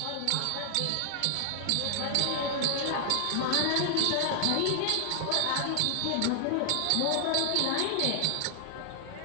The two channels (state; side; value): different; both; correlation 0.00